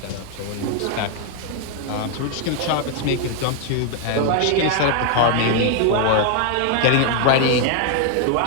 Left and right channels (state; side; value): different; both; correlation 0.00